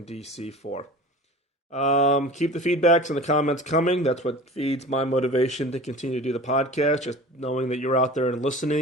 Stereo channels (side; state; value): both; normal; correlation 0.39